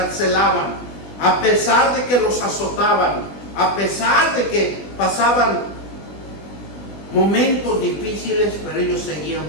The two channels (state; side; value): late; right; 20 ms